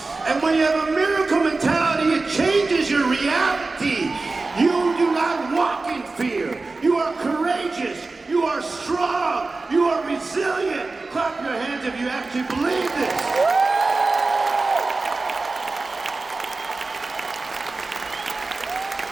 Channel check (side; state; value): left; quieter; 3.6 dB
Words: And when you have a miracle mentality, it changes your reality. You do not walk in fear. You are courageous. You are strong. You are resilient. Clap your hands if you actually believe this.